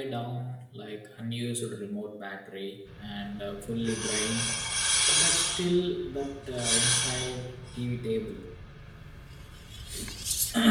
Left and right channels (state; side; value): identical; both; correlation 1.00